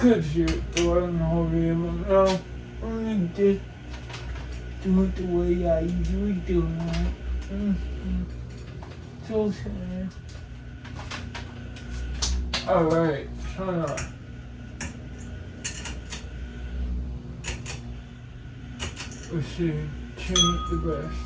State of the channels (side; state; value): both; identical; correlation 1.00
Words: shoot the way in the whole video, but no, I'm gonna just do it the way I usually do it. So sad. Alright, turn on. Let's see, change the best.